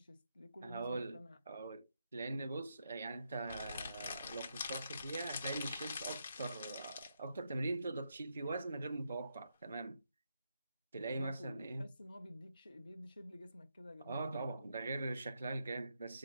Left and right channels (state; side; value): inverted; both; correlation -0.81